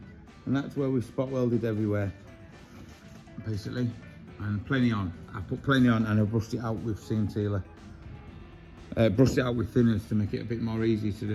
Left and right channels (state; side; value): identical; both; correlation 1.00